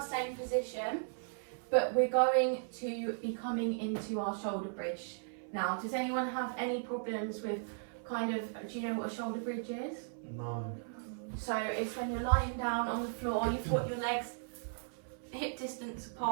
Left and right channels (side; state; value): left; silent; 53 dB below the other